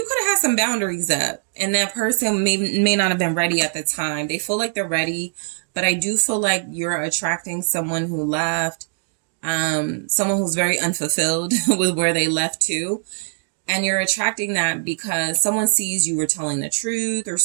could have had some boundaries up and that person may not have been ready at the time. They feel like they're ready, but I do feel like you're attracting someone who left, someone who's very unfulfilled with where they left to. And you're attracting that because someone sees you were telling the truth or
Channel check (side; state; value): left; silent; digital silence